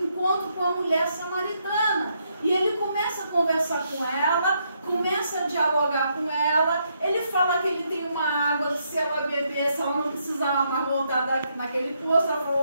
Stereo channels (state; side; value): inverted; both; correlation -0.76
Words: encontro com a mulher samaritana. E ele começa a conversar com ela, começa a dialogar com ela. Ele fala que ele tem uma água, se ela bebesse, ela não precisava mais voltar naquele poço. Ela falou,